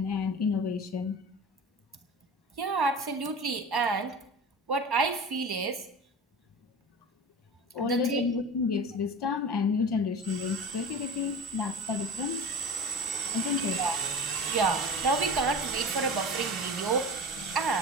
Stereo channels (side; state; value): both; normal; correlation 0.34